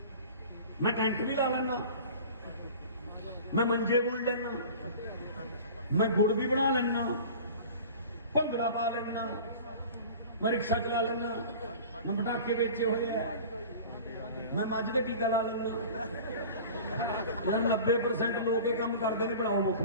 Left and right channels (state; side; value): inverted; both; correlation -0.40